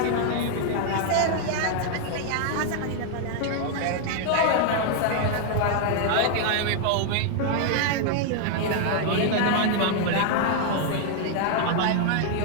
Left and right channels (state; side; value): different; both; correlation 0.00